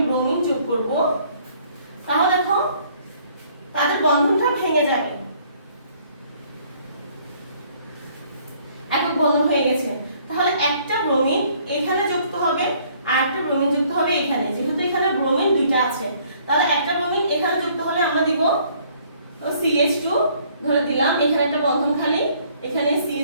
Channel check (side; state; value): both; inverted; correlation -0.61